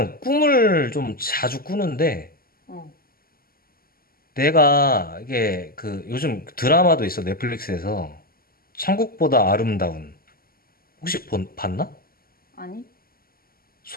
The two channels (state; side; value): late; right; 0.43 ms